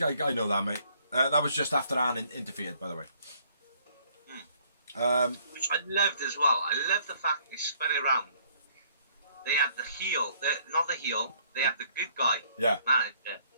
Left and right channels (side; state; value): both; inverted; correlation -0.64